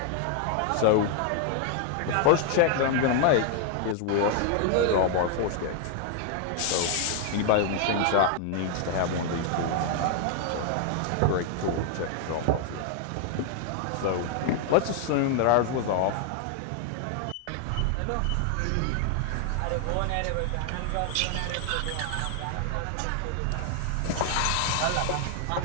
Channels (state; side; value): different; both; correlation 0.00